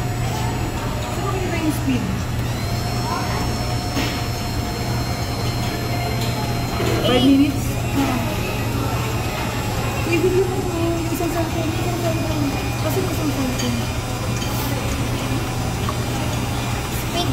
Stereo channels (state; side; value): identical; both; correlation 1.00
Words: Saan mo ba yung speed? 5 minutes? I-video mo ko yung isang cellphone. Kasi yung isang cellphone. Speed